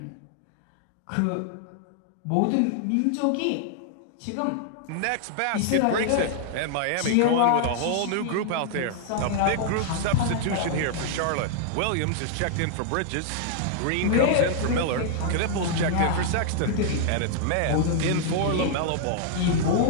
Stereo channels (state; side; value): different; both; correlation 0.00